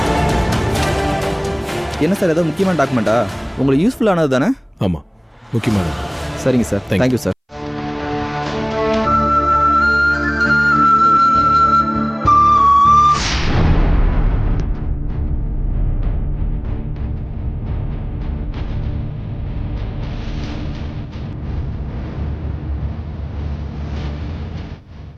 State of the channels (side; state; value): both; identical; correlation 1.00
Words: என்ன சார், ஏதோ முக்கியமான டாக்குமெண்ட்டா? உங்களுக்கு யூஸ்ஃபுல்லானது தானே? ஆமாம், முக்கியமானது. சரிங்க சார், தேங்க்யூ சார்.